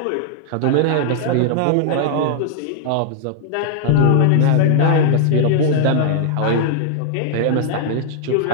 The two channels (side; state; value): both; different; correlation -0.01